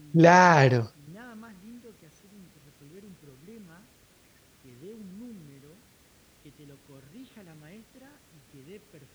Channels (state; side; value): identical; both; correlation 1.00